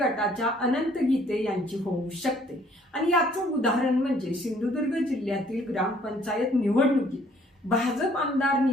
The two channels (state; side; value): normal; both; correlation 0.61